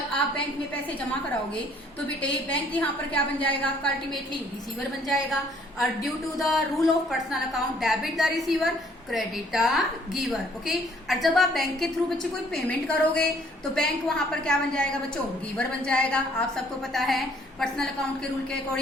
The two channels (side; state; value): both; normal; correlation 0.61